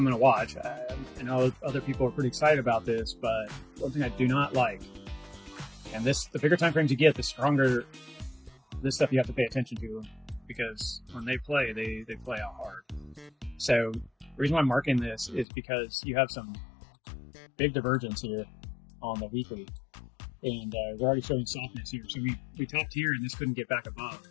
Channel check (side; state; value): right; drops out; at 15.5 s